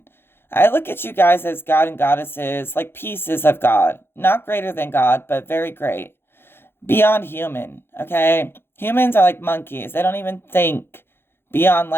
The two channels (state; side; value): late; right; 0.11 ms